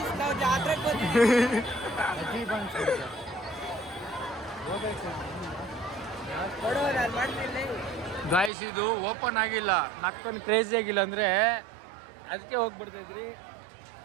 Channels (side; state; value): left; drops out; at 8.5 s